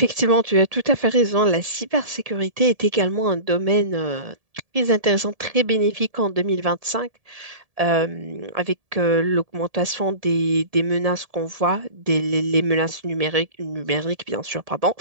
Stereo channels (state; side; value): late; left; 1.7 ms